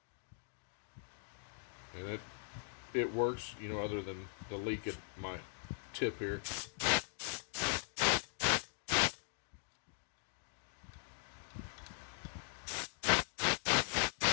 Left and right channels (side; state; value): right; silent; 51 dB below the other